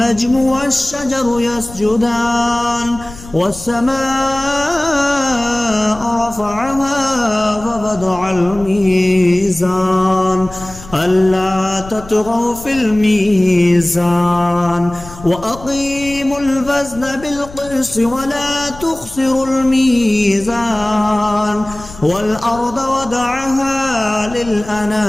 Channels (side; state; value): left; noise; rumble, 17 dB below the sound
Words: والشجر يسجدان والسماء رفعها ووضع الميزان ألا تطغوا في الميزان وأقيموا الوزن بالقسط ولا تخسروا الميزان والأرض وضعها